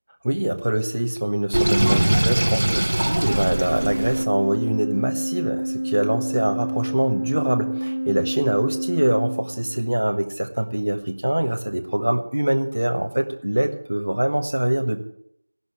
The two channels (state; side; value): inverted; both; correlation -1.00